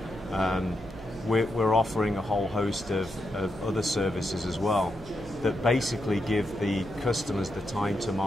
We're offering a whole host of other services as well that basically give the customers the time to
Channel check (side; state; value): right; noise; hum, 17 dB below the sound